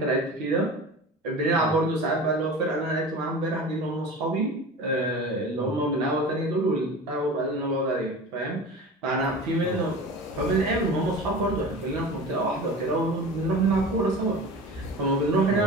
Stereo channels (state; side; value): normal; both; correlation 0.35